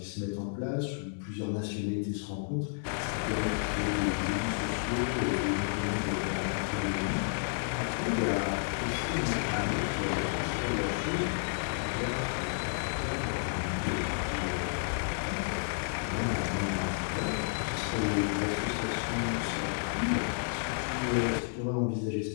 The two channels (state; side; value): silent; right; digital silence